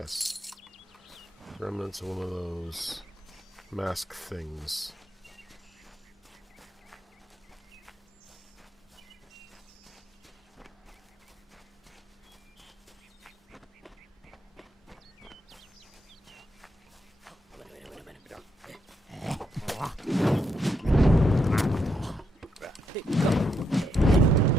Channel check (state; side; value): normal; both; correlation 0.79